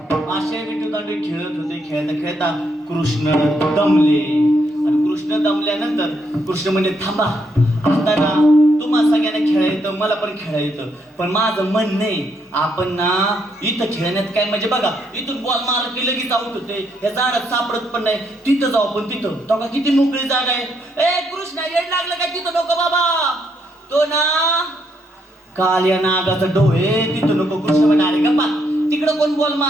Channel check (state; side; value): normal; both; correlation 0.75